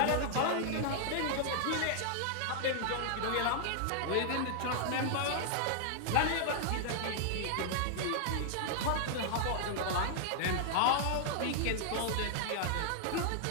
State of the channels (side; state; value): both; different; correlation -0.01